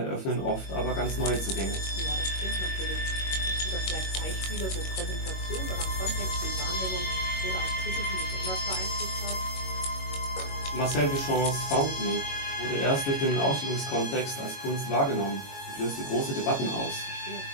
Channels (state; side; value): late; right; 21 ms